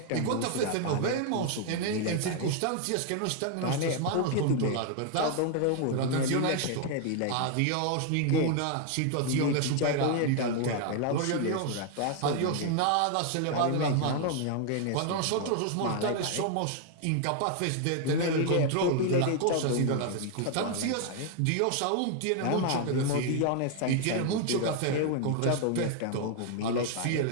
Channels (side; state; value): both; different; correlation 0.00